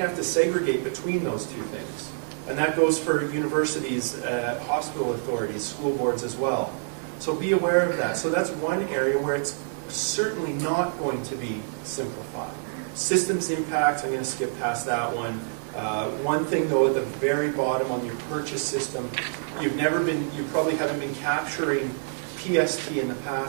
have to segregate between those two things. And that goes for universities, hospital authorities, school boards as well. So be aware of that. So that's one area where it's certainly not going to be simplified. Systems impact, I'm going to skip past that one. One thing though, at the very bottom on your purchase system, you probably haven't been capturing PST in the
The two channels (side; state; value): left; silent; digital silence